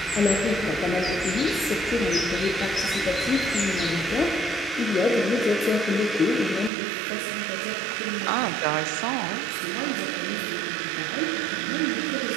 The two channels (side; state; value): left; drops out; at 6.7 s